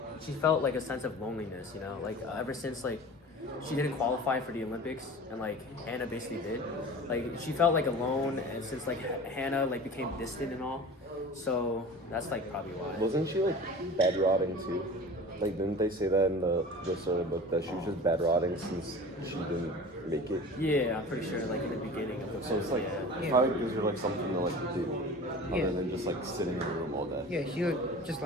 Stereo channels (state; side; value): normal; both; correlation 0.38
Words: she felt like a sense of loneliness, like ever since like she didn't qualify for the Olympics and like Hannah basically did. Like she felt like alone and since like Hannah like became distant and all. So that's like probably why. Wasn't she like bed rotting too? Like didn't they say that in the sort of book that she was just bed rotting since she didn't make it? Yeah, I'm pretty sure like in the beginning of the So it's like yeah. it probably gives her like something to like do Yeah. other than just like sitting in the room all day. Yeah, she like just